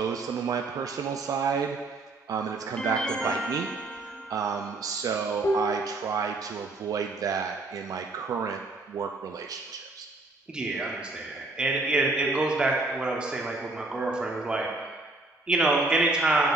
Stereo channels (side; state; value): left; quieter; 3.2 dB